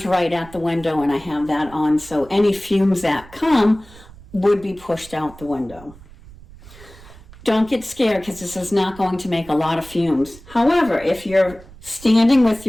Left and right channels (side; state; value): right; noise; rumble, 20 dB below the sound